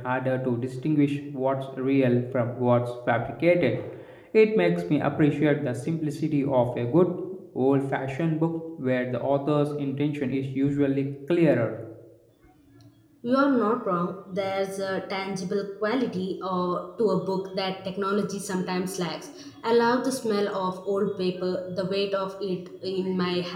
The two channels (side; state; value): both; identical; correlation 1.00